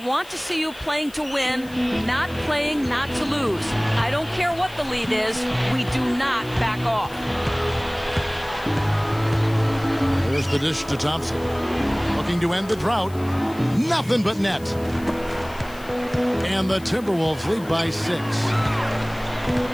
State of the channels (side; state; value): left; noise; hiss, 22 dB below the sound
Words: want to see you playing to win, not playing not to lose. I don't care what the lead is. We do not back off. the dish to Thompson. Looking to end the drought. Nothing but net. And the Timberwolves lead by 6.